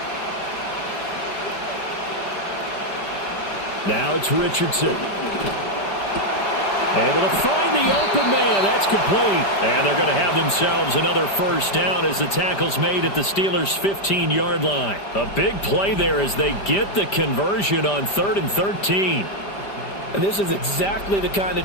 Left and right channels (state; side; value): late; right; 5.1 ms